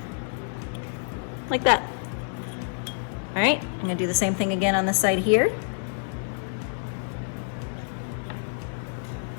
Like that. All right, I'm gonna do the same thing again on the side here.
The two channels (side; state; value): right; silent; digital silence